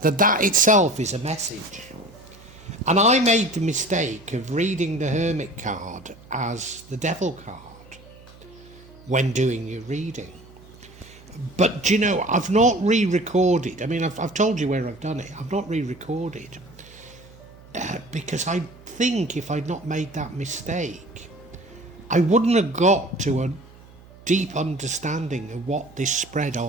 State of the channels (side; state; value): right; noise; hum, 22 dB below the sound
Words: that itself is a message. And I made the mistake of reading the Hermit card as the Devil card when doing your reading. But, do you know, I've not re-recorded. I mean, I've told you where I've done it. I've not re-recorded because I think if I'd not made that mistake, I wouldn't have got to a deep understanding of what this spread